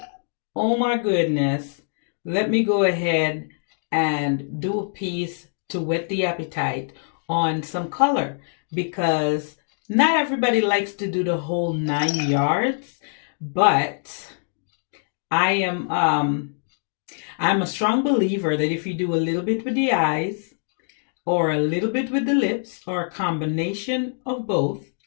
oh my goodness, let me go ahead and do a piece to whet the appetite on some color because not everybody likes to do the whole 9 yards, but I am I'm a strong believer that if you do a little bit with the eyes or a little bit with the lips or a combination of both,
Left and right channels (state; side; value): silent; right; digital silence